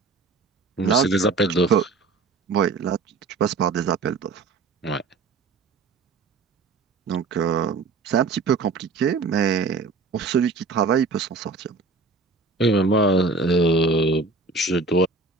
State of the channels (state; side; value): quieter; left; 4.0 dB